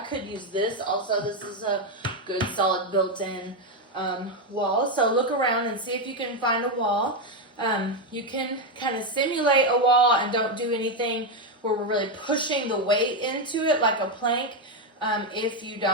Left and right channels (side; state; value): both; normal; correlation 0.06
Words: could use this also. This is a good solid built-in wall. So look around and see if you can find a wall. You can kind of simulate a wall and don't do anything where we're really pushing the weight into it like a plank if you